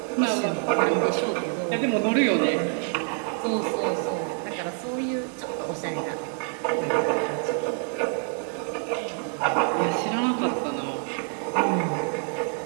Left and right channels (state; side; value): quieter; left; 37.9 dB